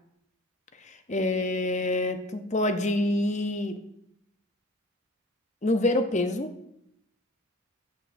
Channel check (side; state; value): both; normal; correlation 0.44